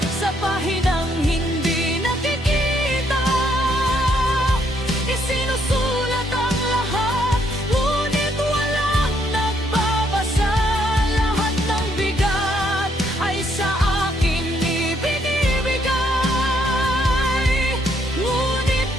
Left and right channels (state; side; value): normal; both; correlation 0.71